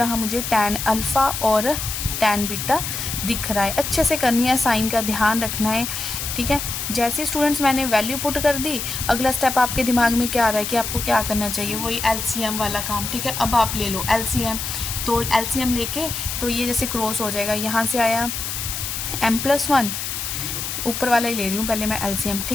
मुझे tan अल्फ़ा और tan बीटा दिख रहा है। अच्छे से करनी है, साइन का ध्यान रखना है, ठीक है। जैसे स्टूडेंट्स मैंने वैल्यू पुट कर दी, अगला स्टेप आपके दिमाग में क्या आ रहा है कि आपको क्या करना चाहिए, वही LCM वाला काम, ठीक है। अब आप ले लो LCM, तो LCM लेके तो ये जैसे क्रॉस हो जाएगा, यहाँ से आया m+1, ऊपर वाला ही ले रही हूँ पहले मैं LCM,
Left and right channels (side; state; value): left; noise; hiss, 4 dB below the sound